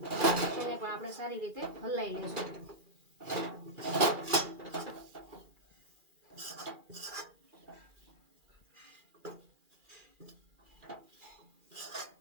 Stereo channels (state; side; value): late; left; 2.4 ms